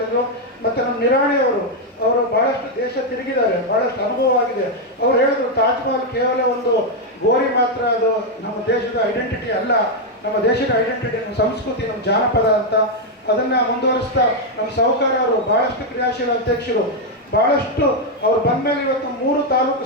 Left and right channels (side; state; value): both; normal; correlation 0.01